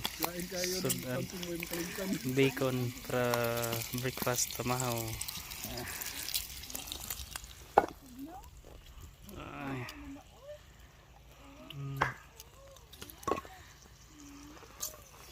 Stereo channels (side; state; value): both; identical; correlation 1.00